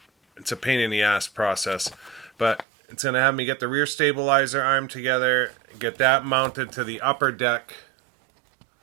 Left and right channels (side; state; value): left; drops out; at 2.7 s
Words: a pain in the ass process, but it's gonna have me get the rear stabilizer arm together, get that mounted to the upper deck